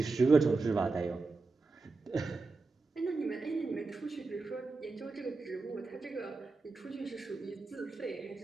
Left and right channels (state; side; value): quieter; left; 3.9 dB